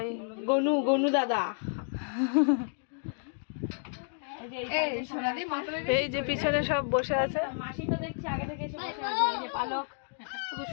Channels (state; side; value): silent; right; 56 dB below the other